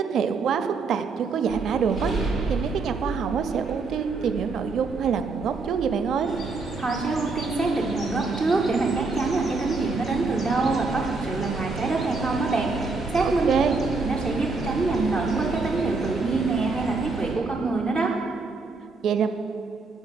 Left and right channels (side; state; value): left; quieter; 4.0 dB